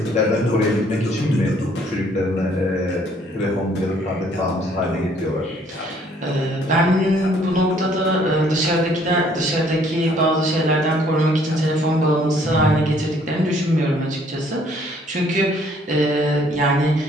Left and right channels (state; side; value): normal; both; correlation 0.62